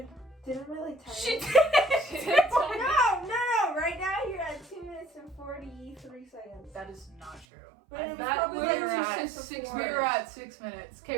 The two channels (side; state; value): left; drops out; at 7.5 s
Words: didn't really tell She you. did! No. Right now you're at 2 minutes and 43 seconds. That is not true. But it was That probably we were like at six six. before. We were at 6 minutes.